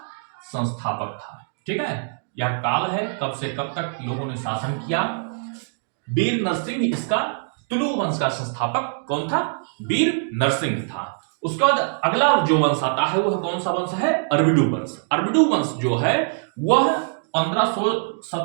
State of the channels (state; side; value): silent; left; digital silence